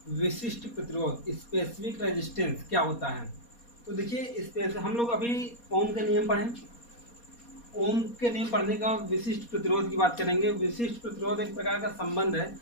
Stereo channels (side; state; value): right; late; 4.2 ms